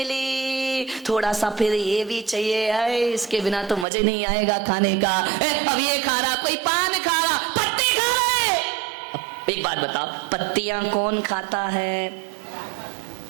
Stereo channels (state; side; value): drops out; left; at 3.9 s